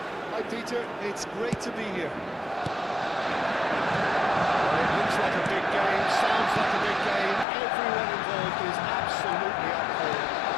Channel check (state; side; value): drops out; right; at 7.5 s